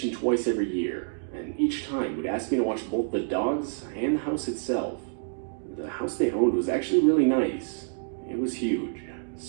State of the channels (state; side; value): silent; left; digital silence